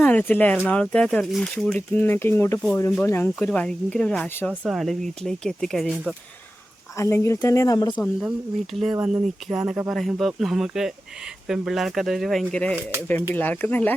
അറിയത്തില്ല, എറണാകുളത്തെ ചൂടിൽ നിന്നൊക്കെ ഇങ്ങോട്ട് പോരുമ്പോൾ ഞങ്ങൾക്കൊരു ഭയങ്കര ഒരു ആശ്വാസമാണ് വീട്ടിലേക്ക് എത്തിക്കഴിയുമ്പോൾ. അല്ലെങ്കിൽ തന്നെ നമ്മുടെ സ്വന്തം വീട്ടിൽ വന്ന് നിൽക്കുക എന്നൊക്കെ പറയുമ്പോൾ നമുക്ക് പെൺപിള്ളേർക്ക് അതൊരു ഭയങ്കര, പെൺപിള്ളേർക്കെന്നല്ല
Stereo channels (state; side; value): normal; both; correlation 0.94